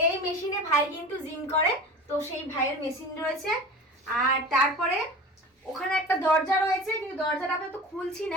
এই মেশিনে ভাই কিন্তু জিম করে, তো সেই ভাইয়ের মেশিন রয়েছে। আর তারপরে ওখানে একটা দরজা রয়েছে, কিন্তু দরজাটা আমি তো খুলছি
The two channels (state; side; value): normal; both; correlation 0.36